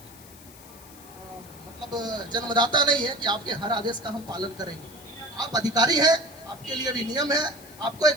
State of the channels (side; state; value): left; noise; hiss, 20 dB below the sound